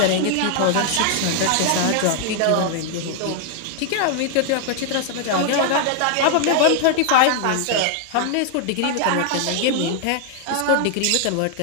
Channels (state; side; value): different; both; correlation 0.00